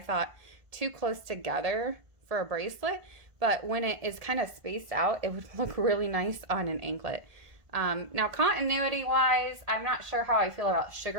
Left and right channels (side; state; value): left; late; 1.5 ms